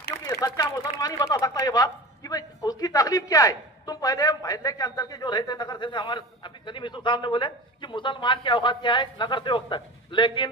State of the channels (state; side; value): normal; both; correlation 0.33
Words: सच्चा मुसलमान ही बता सकता है ये बात कि भाई उसकी तकलीफ क्या है। तुम पहले महल्ले के अंदर के जो रहते नगर से, हमारे अभी सलीम यूसुफ साहब ने बोले कि मुसलमान की औकात क्या है नगर सेवक तक, लेकिन